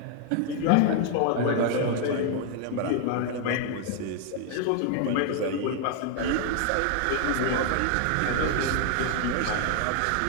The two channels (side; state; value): both; different; correlation 0.00